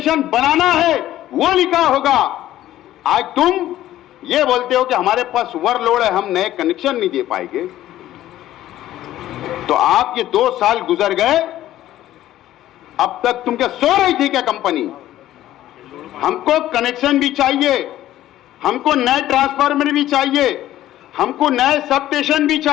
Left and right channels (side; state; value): right; quieter; 13.7 dB